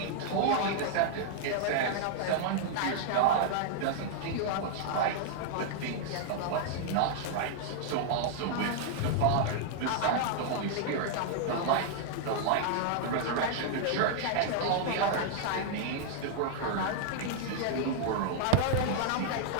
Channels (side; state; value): both; different; correlation -0.01